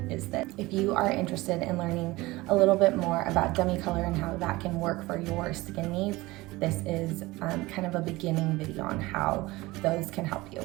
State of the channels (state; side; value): quieter; left; 20.4 dB